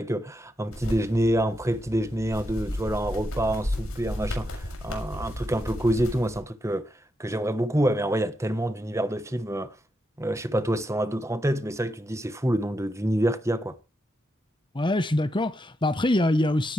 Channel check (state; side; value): normal; both; correlation 0.84